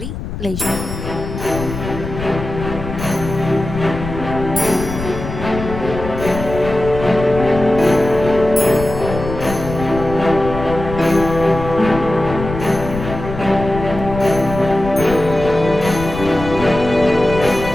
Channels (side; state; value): left; noise; rumble, 8 dB below the sound